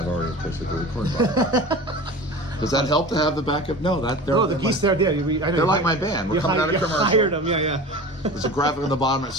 already pitched it to record vibe. Does that help to have the backup? No, the geese there. Yeah, they're like my band. We're coming out of commercial. Hired them. Yeah. There's a graphic on the bottom that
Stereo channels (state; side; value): normal; both; correlation 0.35